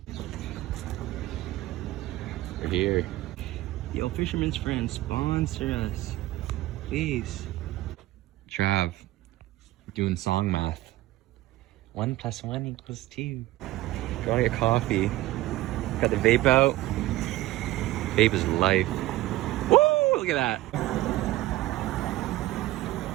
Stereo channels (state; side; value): quieter; left; 17.0 dB